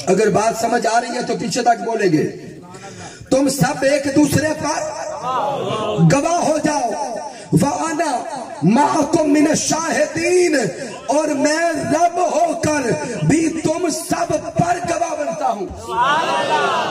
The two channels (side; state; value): both; identical; correlation 1.00